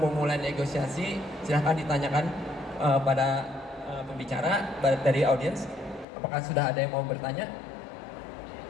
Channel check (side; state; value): right; drops out; at 6.1 s